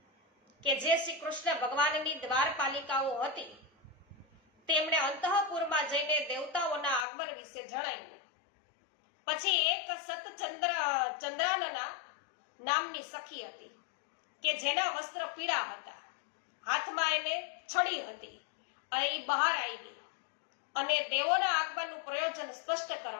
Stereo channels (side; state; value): right; drops out; at 7.1 s